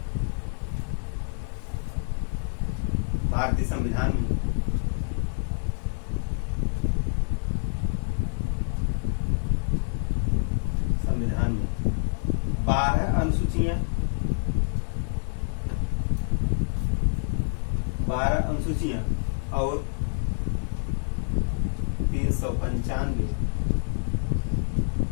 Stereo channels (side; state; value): right; silent; digital silence